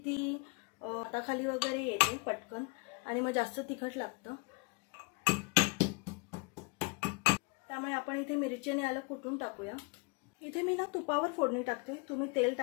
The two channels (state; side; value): quieter; right; 30.2 dB